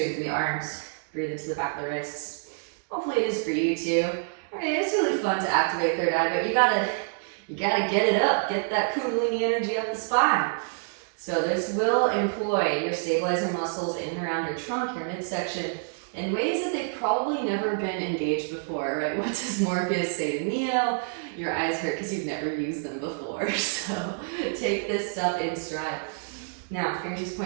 through the arms, breathe into the back of the wrists. Hopefully it is for you too. Alright, it's really fun to activate third eye, but you gotta get it up, get that kundalini energy up the spine. So this will employ your stabilizing muscles in and around your trunk, your midsection, in ways that they've probably never been engaged before, right? What does Morpheus say to Neo? Your eyes hurt because you've never used them before. So take this stuff in stride. Now, fingertips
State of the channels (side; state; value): left; silent; digital silence